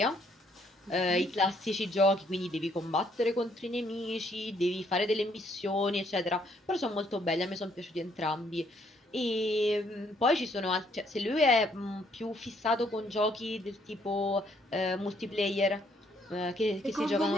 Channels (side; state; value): both; normal; correlation 0.68